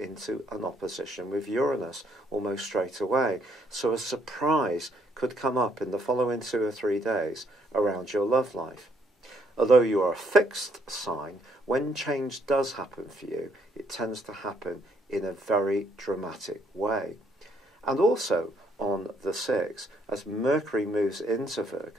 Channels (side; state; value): both; normal; correlation 0.69